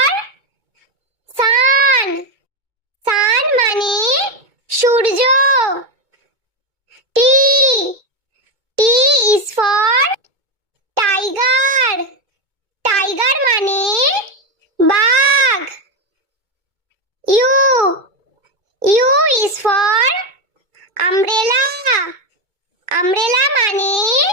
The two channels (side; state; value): left; late; 2.2 ms